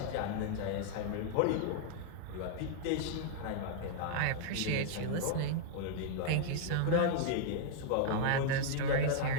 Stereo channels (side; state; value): both; different; correlation -0.01